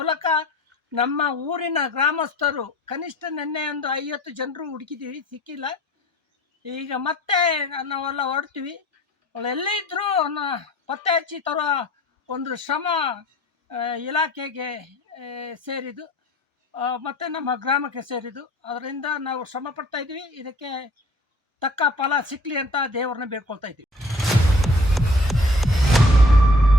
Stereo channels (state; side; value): normal; both; correlation 0.51